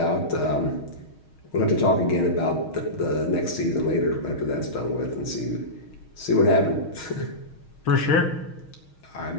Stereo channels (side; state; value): right; late; 6.4 ms